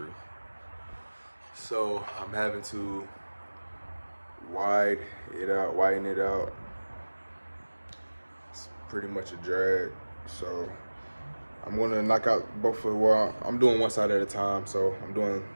So I'm having to widen it out. It's pretty much a drag. So I'm gonna knock out both of, well, I'm doing one side at a time. So I'm doing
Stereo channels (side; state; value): both; inverted; correlation -1.00